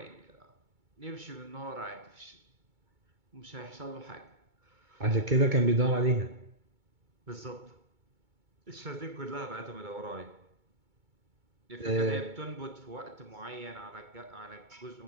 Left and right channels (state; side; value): late; left; 2.2 ms